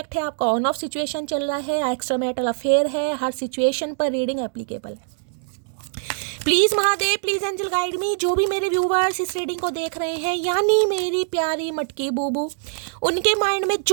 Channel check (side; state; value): left; silent; digital silence